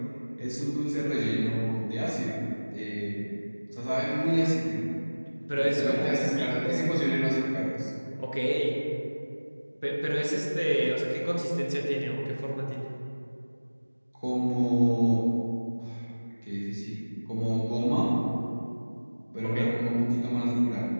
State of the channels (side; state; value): both; inverted; correlation -1.00